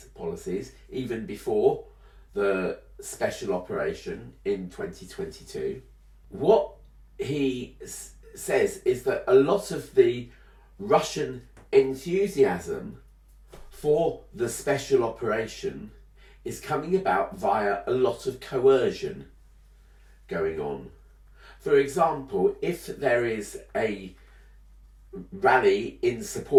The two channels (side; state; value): both; identical; correlation 1.00